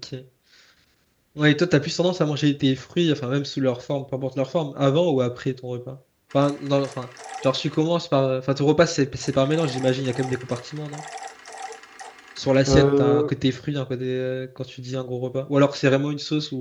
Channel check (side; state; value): both; identical; correlation 1.00